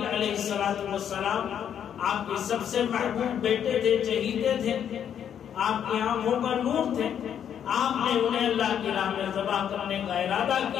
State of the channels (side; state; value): right; quieter; 9.0 dB